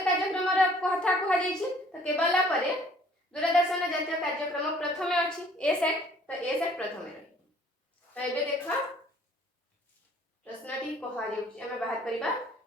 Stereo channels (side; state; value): both; normal; correlation 0.57